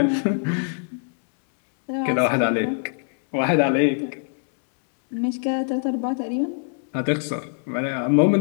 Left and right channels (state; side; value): silent; right; 62 dB below the other